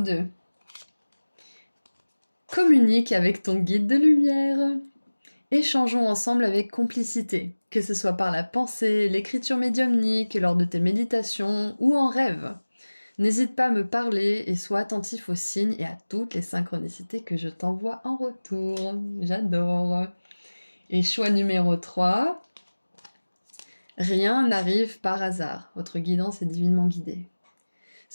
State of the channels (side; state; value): both; inverted; correlation -1.00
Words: Communique avec ton guide de lumière. Échangeons ensemble avec complicité, que ce soit par la pensée, l'écriture médiumnique, lors de tes méditations ou en rêve. N'hésite pas à me parler et sois attentif aux signes et à toutes les synchronicités que je t'envoie en retour. J'adore. Et choix numéro 3. Rien n'arrive par hasard, votre guidance est divinement guidée.